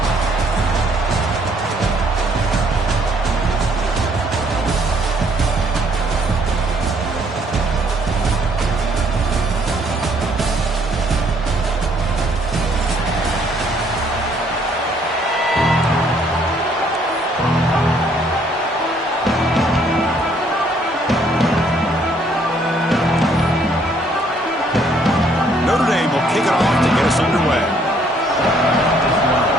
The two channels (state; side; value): normal; both; correlation 0.65